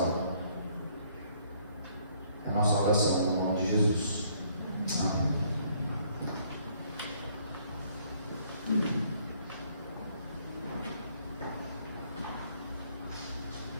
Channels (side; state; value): both; inverted; correlation -0.65